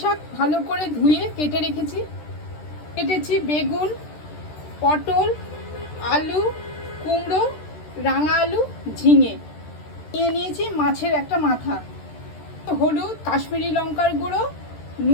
ভালো করে ধুয়ে কেটে রেখেছি। কেটেছি বেগুন, পটল, আলু, কুমড়ো, রাঙা আলু, ঝিঙে। নিয়ে নিয়েছি মাছের একটা মাথা, হলুদ, কাশ্মীরি লঙ্কার গুঁড়ো,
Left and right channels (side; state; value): right; late; 13 ms